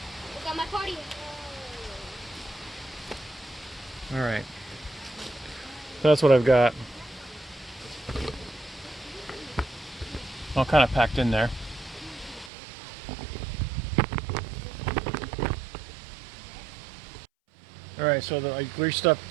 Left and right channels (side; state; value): left; drops out; at 12.5 s